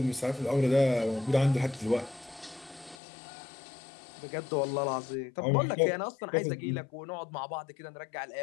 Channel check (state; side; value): drops out; right; at 3.0 s